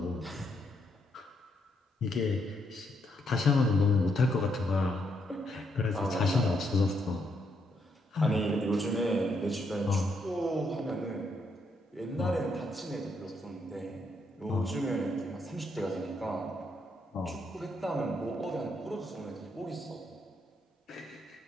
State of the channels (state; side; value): normal; both; correlation 0.76